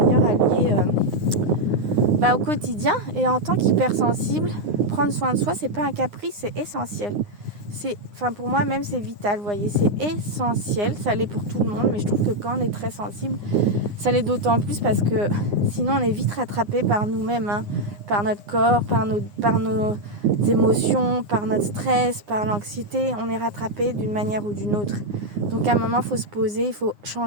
allié au quotidien. Et en tant qu'hypersensible, prendre soin de soi, c'est pas un caprice, c'est essentiel. Pour moi même c'est vital, vous voyez, c'est essentiel, ça l'est pour tout le monde, mais je trouve que quand on est très sensible, ça l'est d'autant plus parce que sinon on est vite rattrapé par nous-mêmes, par notre corps, par nos émotions, par notre stress, par l'anxiété, on est rattrapé d'une manière ou d'une autre. Donc à un moment il faut se poser, il faut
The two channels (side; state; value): left; late; 9.6 ms